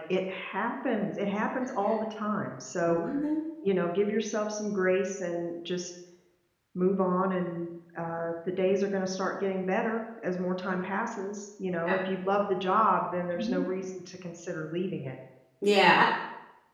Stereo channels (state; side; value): identical; both; correlation 1.00